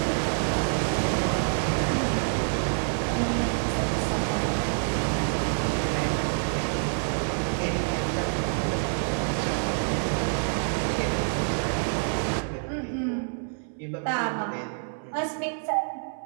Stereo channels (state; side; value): silent; left; 60 dB below the other